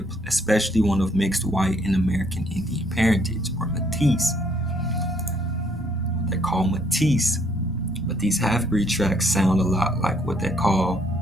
especially one of mixed white and American Indian parentage, or Métis. They're called Métis. But these half-breed tracts sound a lot like what they call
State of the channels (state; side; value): normal; both; correlation 0.67